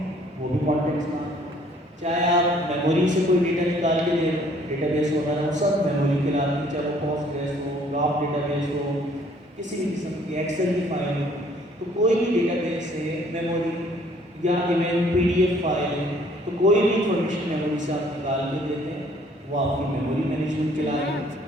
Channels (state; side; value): normal; both; correlation 0.60